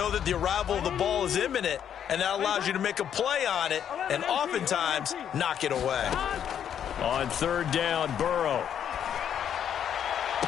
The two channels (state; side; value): quieter; right; 9.1 dB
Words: that the arrival of the ball is imminent. And that allows you to make a play on it and oftentimes knock it away. On third down, Burrow.